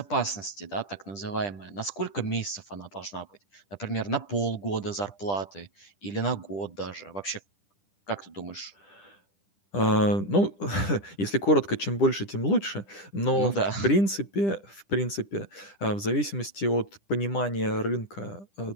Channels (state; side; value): late; right; 10 ms